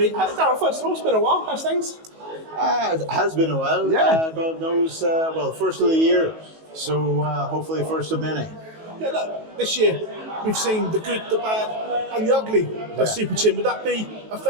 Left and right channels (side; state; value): left; late; 19 ms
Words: Daryl, first of all, it's been a while. How's things? It has been a while. Yeah. God knows, first of the year. So hopefully first of many. Yeah, look, this year we've seen the good, the bad and the ugly of Super Chin. Would that be a